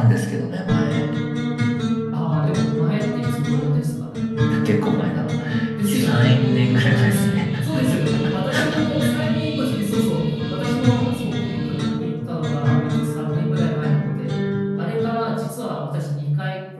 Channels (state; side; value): identical; both; correlation 1.00